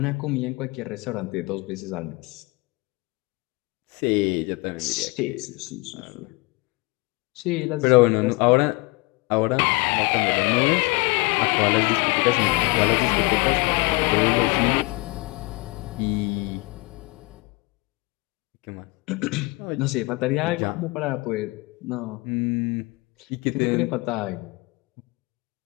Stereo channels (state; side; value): quieter; right; 24.9 dB